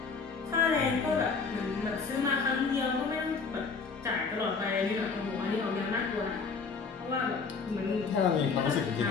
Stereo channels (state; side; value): quieter; right; 5.0 dB